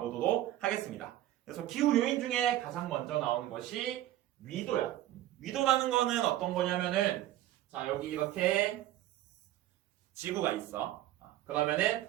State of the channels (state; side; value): quieter; left; 14.0 dB